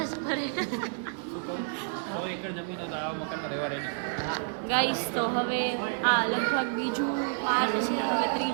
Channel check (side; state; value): left; silent; 58 dB below the other